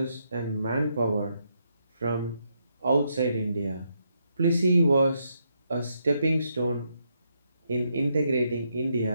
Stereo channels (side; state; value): both; inverted; correlation -0.79